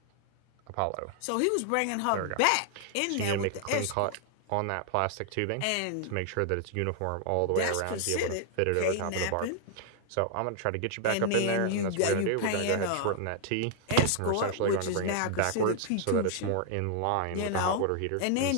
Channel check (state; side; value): different; both; correlation 0.00